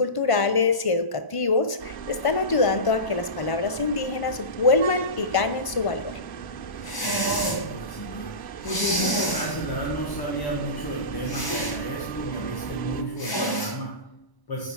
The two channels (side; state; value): right; late; 1.0 ms